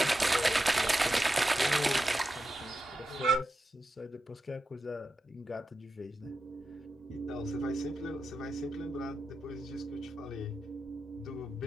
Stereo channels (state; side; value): normal; both; correlation 0.90